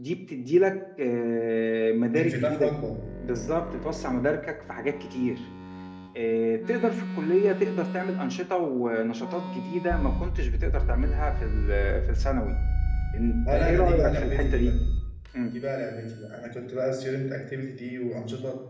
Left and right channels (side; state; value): both; identical; correlation 1.00